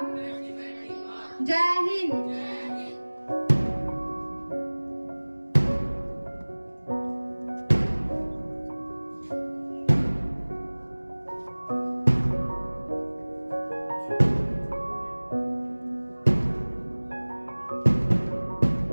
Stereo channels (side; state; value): both; inverted; correlation -1.00